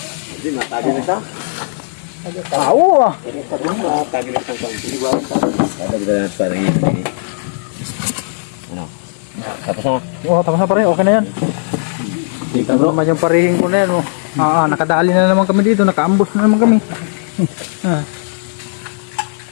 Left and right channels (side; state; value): right; silent; digital silence